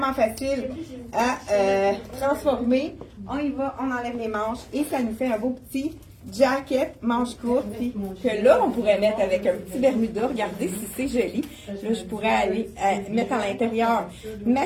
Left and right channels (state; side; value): identical; both; correlation 1.00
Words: facile à transformer. On y va, on enlève les manches et ça nous fait un beau petit jacket, manche courte, puis que là, on pourrait mettre avec un petit Bermuda. Regardez si c'est joli. Là, je pourrais aller mettre à l'intérieur